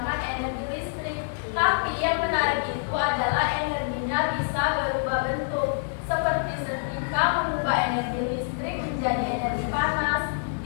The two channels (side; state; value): right; silent; digital silence